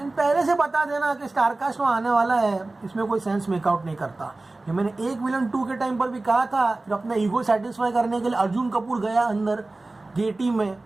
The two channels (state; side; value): quieter; left; 3.1 dB